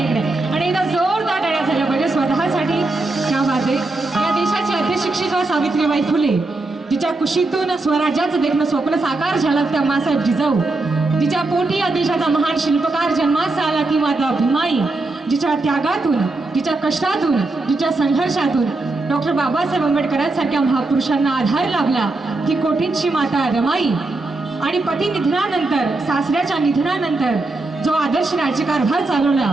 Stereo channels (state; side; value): quieter; left; 3.1 dB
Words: इकडे आणि एकदा जोरदार टाळ्या झाल्या पाहिजे स्वतःसाठी. त्या वादे या देशाची अध्यशिक्षिका सावित्रीबाई फुले जिच्या कुशीतून स्वराज्याचं देखणं स्वप्न साकार झालं त्या मासाहेब जिजाऊ जिच्या पोटी या देशाचा महान शिल्पकार जन्मास आला ती माता भीमाई जिच्या त्यागातून जिच्या कष्टातून जिच्या संघर्षातून डॉक्टर बाबासाहेब आंबेडकरांसारख्या महापुरुषांना आधार लाभला ती कोटींची माता रमाई आणि पती निधनानंतर सासऱ्याच्या निधनानंतर जो आदर्श राज्यकारभार